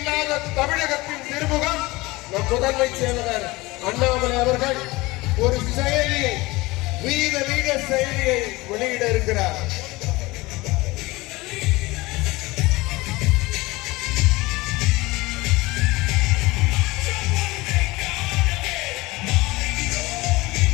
தமிழகத்தின் திருமுகம் நம் முதன்மை செயலர் அண்ணாமலை அவர்கள் ஒரு செயலியை, வீர லீடர் செயலியை வெளியிட இருக்கிறார்.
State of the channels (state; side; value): quieter; right; 21.5 dB